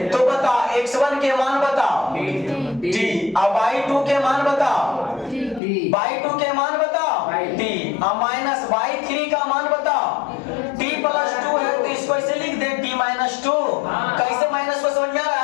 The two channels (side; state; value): right; drops out; at 5.6 s